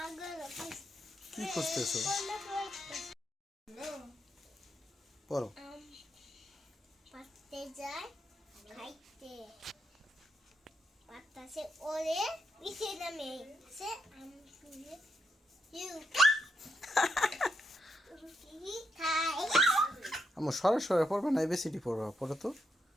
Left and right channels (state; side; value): normal; both; correlation 0.81